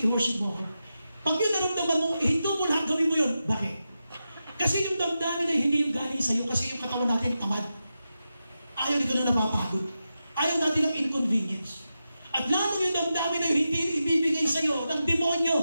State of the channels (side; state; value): both; inverted; correlation -0.90